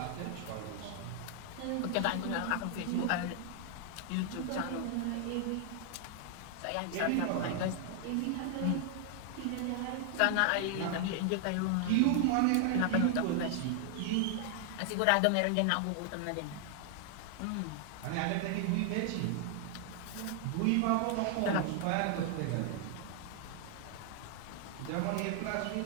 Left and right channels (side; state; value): both; different; correlation 0.00